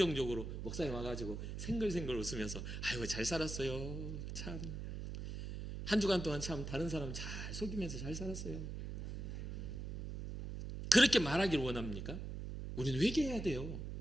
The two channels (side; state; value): right; noise; hum, 6 dB below the sound